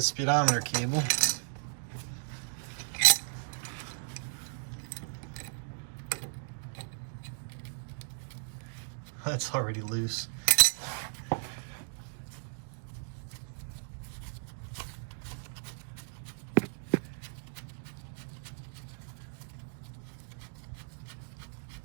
speedometer cable. That's already loose.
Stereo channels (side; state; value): left; silent; digital silence